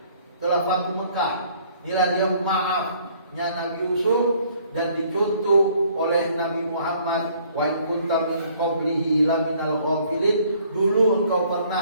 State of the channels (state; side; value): inverted; both; correlation -0.60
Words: Setelah Fathu Mekah, inilah dia maafnya Nabi Yusuf, dan dicontoh kunta min qablihi laminal ghafilin, dulu engkau